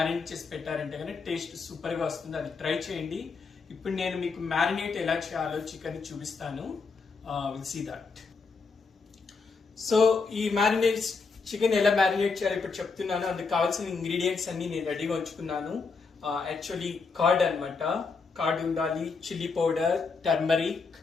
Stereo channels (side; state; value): right; quieter; 4.7 dB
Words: చేసి పెట్టారంటే కానీ టేస్ట్ సూపర్ గా వస్తుంది. అది ట్రై చేయండి. ఇప్పుడు నేను మీకు మ్యారినేట్ ఎలా చేయాలో చికెన్ చూపిస్తాను. Will see that. సో ఈ మ్యారినేట్ చికెన్ ఎలా మ్యారినేట్ చేయాలో ఇప్పుడు చెప్తున్నాను. అందుకు కావాల్సిన ఇంగ్రీడియంట్స్ అన్ని నేను రెడీగా ఉంచుకున్నాను. యాక్చువల్లీ కర్డ్ అనమాట. కర్డ్ ఉండాలి, చిల్లీ పౌడర్, టర్మరిక్